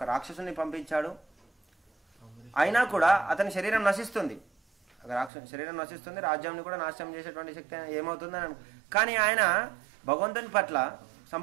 రాక్షసుని పంపించాడు. అయినా కూడా అతని శరీరం నశిస్తుంది, శరీరం నశిస్తుంది, రాజ్యాన్ని కూడా నాశనం చేసేటువంటి శక్తి ఏమవుతుందని. కానీ ఆయన భగవంతుని పట్ల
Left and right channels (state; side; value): drops out; left; at 5.3 s